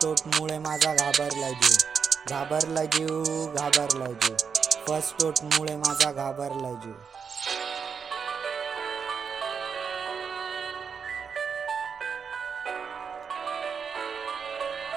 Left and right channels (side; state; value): left; quieter; 6.3 dB